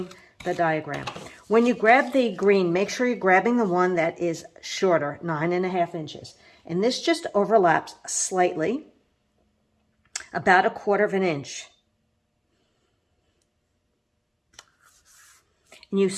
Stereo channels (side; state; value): both; identical; correlation 1.00